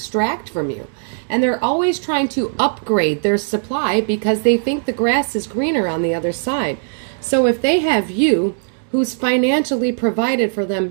from you? And they're always trying to upgrade their supply because they think the grass is greener on the other side. So if they have you, who's financially provided for them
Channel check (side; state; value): left; silent; digital silence